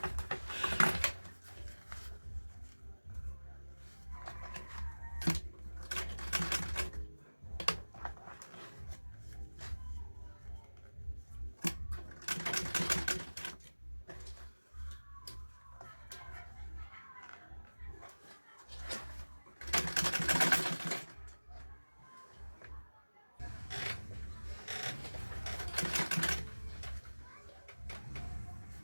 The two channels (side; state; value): both; inverted; correlation -1.00